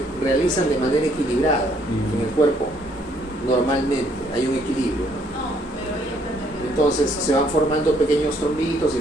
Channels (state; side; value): normal; both; correlation 0.67